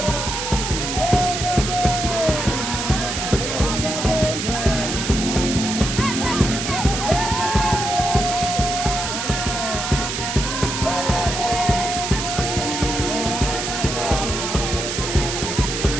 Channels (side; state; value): right; noise; hiss, 3 dB below the sound